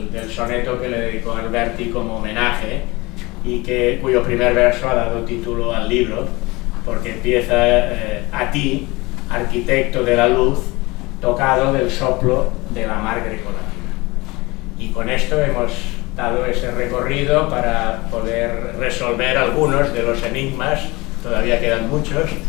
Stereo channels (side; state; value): right; quieter; 23.0 dB